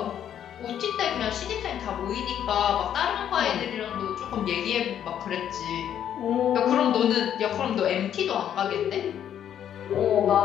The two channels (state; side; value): quieter; right; 9.8 dB